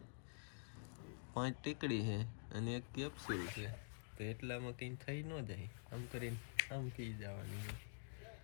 5 ટીકડી છે અને 1 કેપ્સ્યુલ છે, તો એટલામાં કંઈ થઈ ન જાય. આમ કરીને આમ પી જવાની.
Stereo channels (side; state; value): right; silent; digital silence